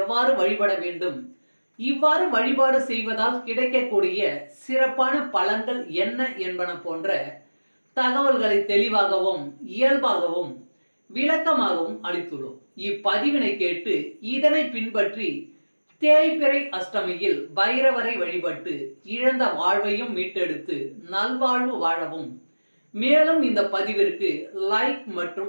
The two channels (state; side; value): inverted; both; correlation -1.00